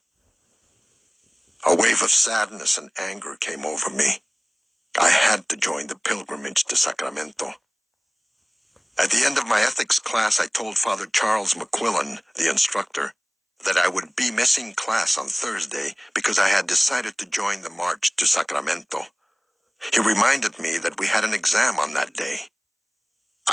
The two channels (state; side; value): identical; both; correlation 1.00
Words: A wave of sadness and anger came over me. I had to join the pilgrimage to Sacramento. At the end of my ethics class, I told Father Charles McQuillan, the instructor, that I would be missing class on Thursday because I had decided to join the march to Sacramento. He reminded me that we had an exam on that day.